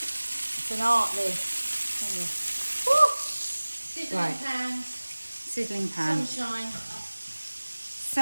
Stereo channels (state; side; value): inverted; both; correlation -1.00